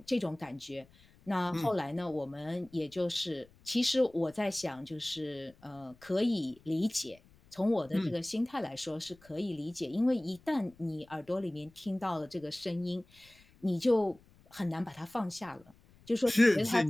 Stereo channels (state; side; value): noise; left; rumble, 28 dB below the sound